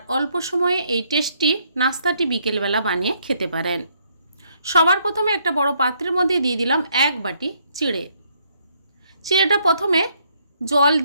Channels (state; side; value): inverted; both; correlation -0.71